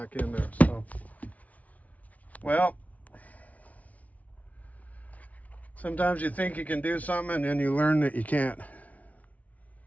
in there. So, well, sometimes you think you can do something and then you learn that you can't.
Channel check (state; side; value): late; right; 0.070 ms